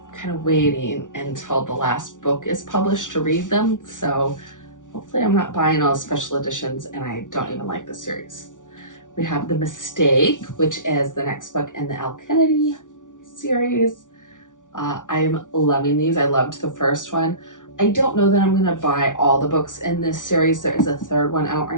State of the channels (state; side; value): late; right; 0.87 ms